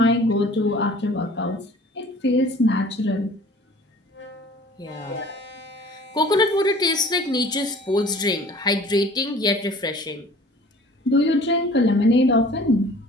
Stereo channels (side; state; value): both; normal; correlation 0.48